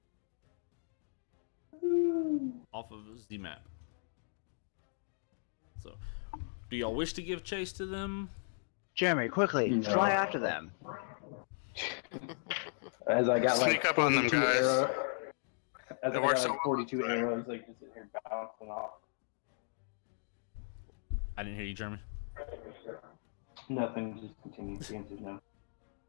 Off of the map. So, do y'all wish to give chase to them? Jeremy, quickly, fly after them. As I got Sneak up on them, guys. As I got like 42 arrows, like just sitting here bouncing off. I didn't hear you, Jeremy. Nothing, just continue. The answer's no.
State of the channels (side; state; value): right; silent; digital silence